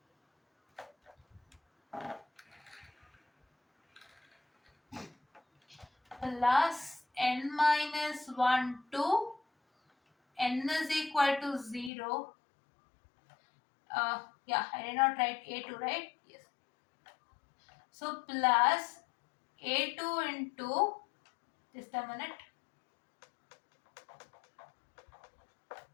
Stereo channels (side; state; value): right; drops out; at 11.9 s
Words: plus n minus 1 to n is equal to 0. Yeah, I did not write a2, right? Yes. So plus a2 into, just a minute,